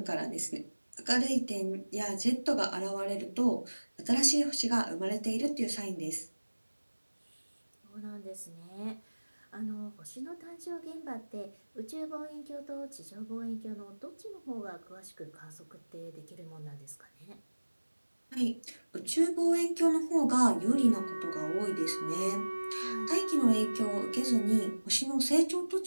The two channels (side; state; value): both; inverted; correlation -1.00